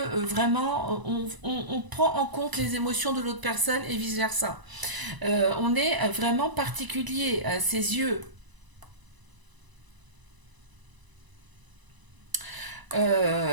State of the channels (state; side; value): late; left; 1.0 ms